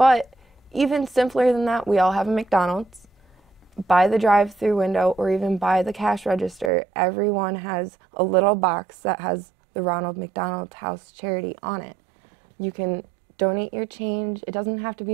even simpler than that, we all have a McDonald's. By the drive-through window or even by the cash register, everyone has a little box that has the Ronald McDonald House Charity on it. You can donate your change. It doesn't have to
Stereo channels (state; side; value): drops out; left; at 6.7 s